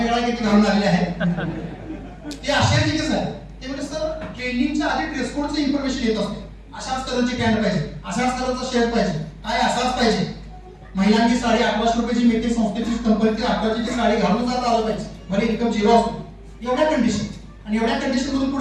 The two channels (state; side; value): identical; both; correlation 1.00